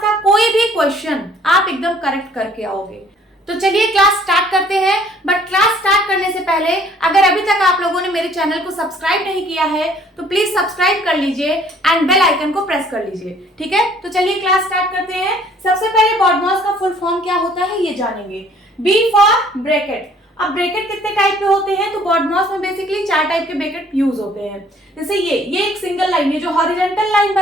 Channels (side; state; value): both; normal; correlation 0.58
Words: का कोई भी क्वेश्चन आप एकदम करेक्ट करके आओगे। तो चलिए क्लास स्टार्ट करते हैं। बट क्लास स्टार्ट करने से पहले अगर अभी तक आप लोगों ने मेरे चैनल को सब्सक्राइब नहीं किया है तो प्लीज सब्सक्राइब कर लीजिए एंड बेल आइकन को प्रेस कर लीजिए। ठीक है, तो चलिए क्लास स्टार्ट करते हैं। सबसे पहले BODMAS का फुल फॉर्म क्या होता है ये जानेंगे। B for bracket. अब ब्रैकेट कितने टाइप के होते हैं तो BODMAS में बेसिकली 4 टाइप के ब्रैकेट यूज होते हैं। जैसे ये एक सिंगल लाइन, ये जो हॉरिजॉन्टल लाइन